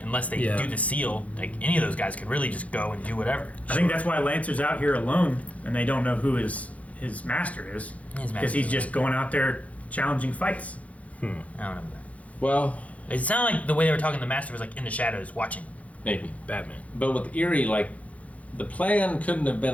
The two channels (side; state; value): right; late; 0.067 ms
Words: unless they Yeah. do the seal, like any of those guys could really just go and do whatever. I think that's why Lancer's out here alone, and they don't know who his master is, His because master's he's just going out there challenging fights. I don't know. Well, It sounded like the way they were talking, the master was like in the shadows watching. maybe. Batman. But with Erie, like, the plan couldn't have